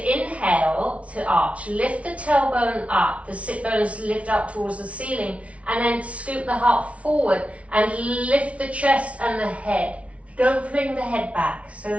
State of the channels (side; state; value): left; late; 0.064 ms